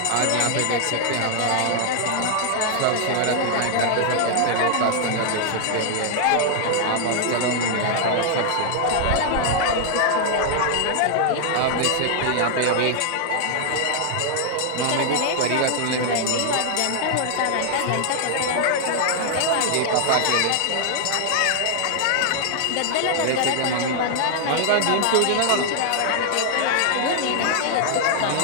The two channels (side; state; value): both; different; correlation 0.00